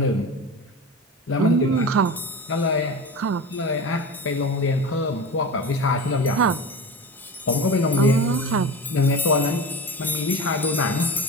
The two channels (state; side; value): normal; both; correlation 0.30